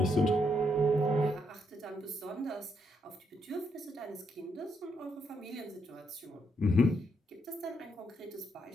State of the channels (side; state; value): both; normal; correlation 0.77